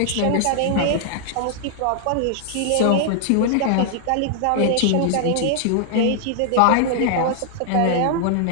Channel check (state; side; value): different; both; correlation 0.00